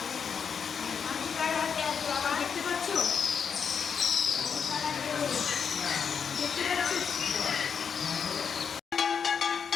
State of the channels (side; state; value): right; quieter; 6.7 dB